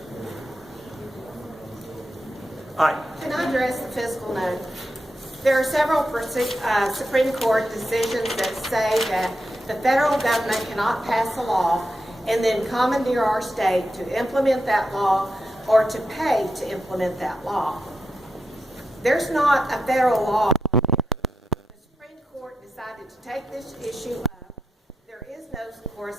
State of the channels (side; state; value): both; normal; correlation 0.86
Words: Aye. Can I address the fiscal note? There are several Supreme Court decisions that say that the federal government cannot pass a law and then commandeer our state to implement that law or to pay to implement that law. There's not a federal law. The Supreme Court decided to take this issue up. There is no